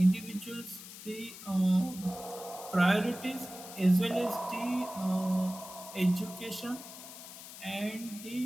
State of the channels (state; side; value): noise; left; hiss, 14 dB below the sound